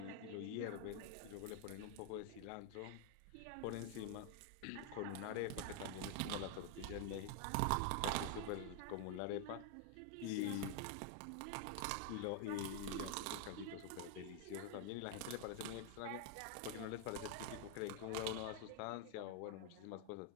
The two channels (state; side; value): different; both; correlation 0.00